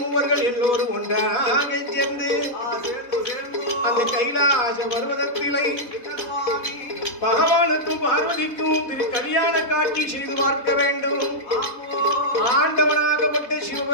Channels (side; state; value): right; late; 4.1 ms